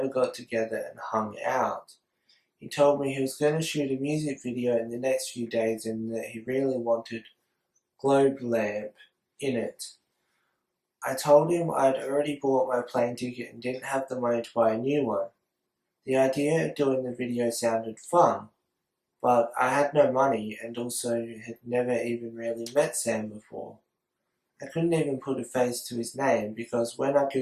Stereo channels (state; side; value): identical; both; correlation 1.00